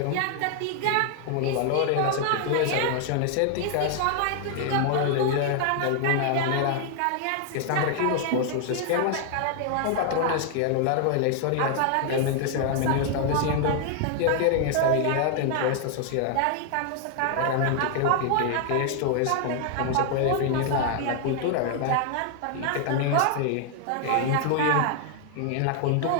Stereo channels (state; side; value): different; both; correlation 0.00